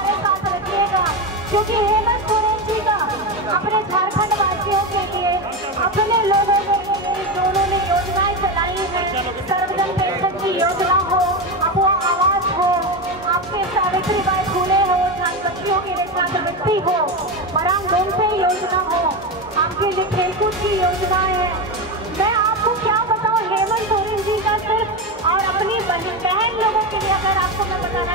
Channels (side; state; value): both; normal; correlation 0.16